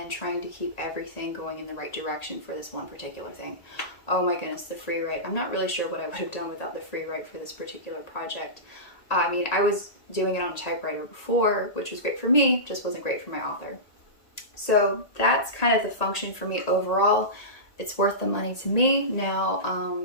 trying to keep everything going in the right direction for this one particular thing. Oh my goodness, the Freewrite. I'm not really sure what I would have done without the Freewrite for this particular project. I mean, I was doing it on a typewriter before, which was great for me, just wasn't great for my author. So that's kind of the function for me overall. It's worth the money to me. Now,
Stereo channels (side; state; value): right; late; 1.8 ms